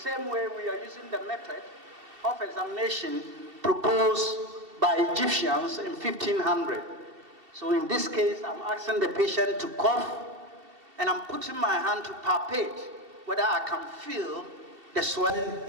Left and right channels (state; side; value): late; left; 2.7 ms